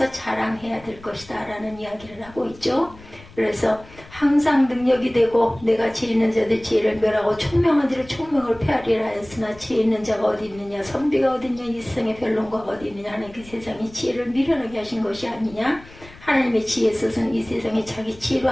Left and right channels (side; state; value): left; noise; rumble, 21 dB below the sound